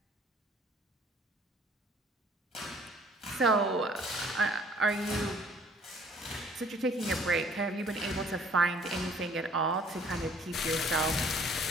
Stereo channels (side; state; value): both; normal; correlation 0.57